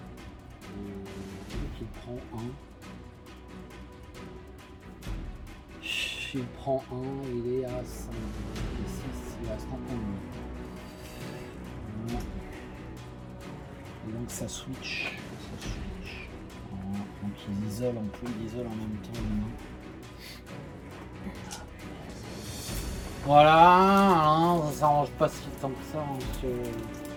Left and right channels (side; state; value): both; identical; correlation 1.00